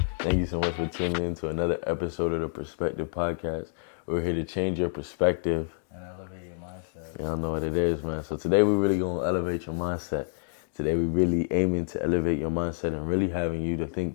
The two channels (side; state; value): right; silent; 59 dB below the other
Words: Thank you so much for tuning in to another episode of the Perspective Podcast. We're here to change your perspective and elevate your mindset. Y'all know what it is, man. So today we're really going to elevate your mindset. Today we're really aiming to elevate your mindset and really having you to think